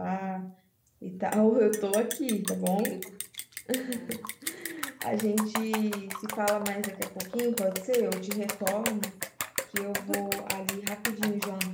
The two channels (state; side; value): identical; both; correlation 1.00